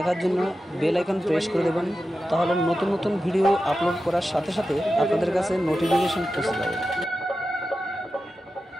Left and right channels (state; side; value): normal; both; correlation 0.92